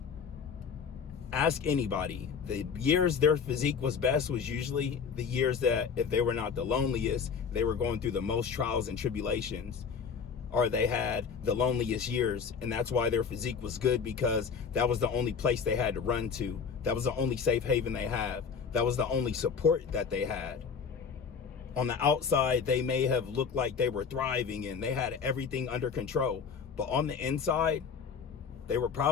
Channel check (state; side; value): quieter; right; 6.2 dB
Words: Ask anybody. The years their physique was best was usually the years that, if they were not the loneliest, they were going through the most trials and tribulations, or they had the loneliest years, and that's why their physique was good, because that was the only place they had to run to. That was the only safe haven they have. That was the only support that they had. On the outside, they may have looked like they were thriving and they had everything under control, but on the inside, they were